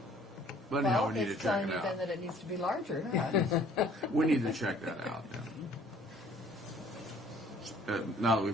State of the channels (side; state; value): both; normal; correlation 0.56